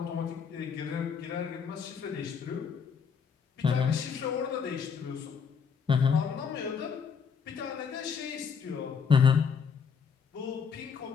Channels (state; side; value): quieter; right; 6.4 dB